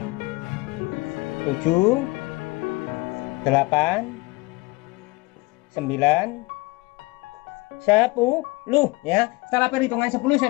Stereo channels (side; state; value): right; quieter; 23.3 dB